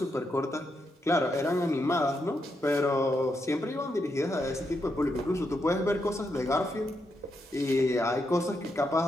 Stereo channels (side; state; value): both; normal; correlation 0.82